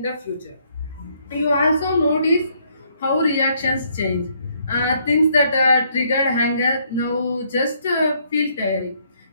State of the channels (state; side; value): inverted; both; correlation -0.69